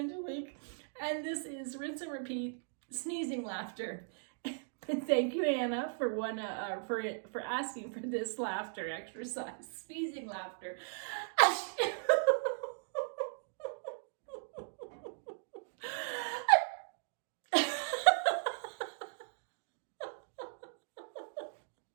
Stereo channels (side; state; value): left; silent; digital silence